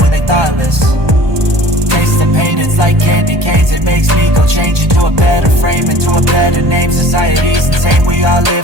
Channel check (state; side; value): late; left; 1.2 ms